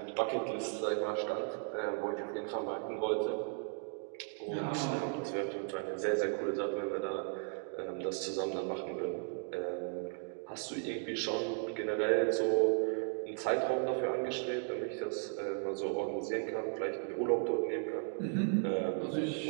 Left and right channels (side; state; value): left; silent; 54 dB below the other